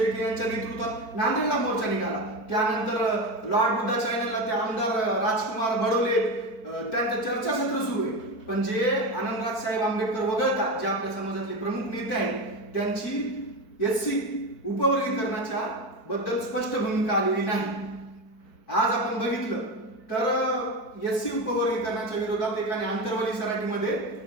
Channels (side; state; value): right; late; 4.5 ms